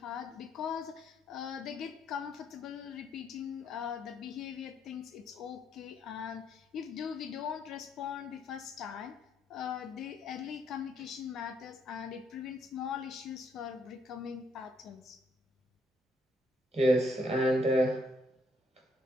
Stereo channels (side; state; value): both; normal; correlation 0.72